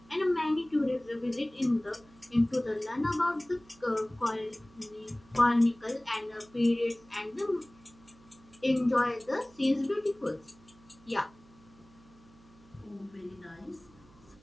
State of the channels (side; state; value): right; noise; hum, 26 dB below the sound